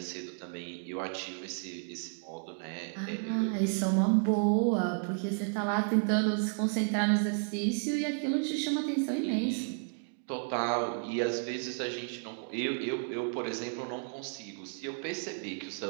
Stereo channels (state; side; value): silent; left; 56 dB below the other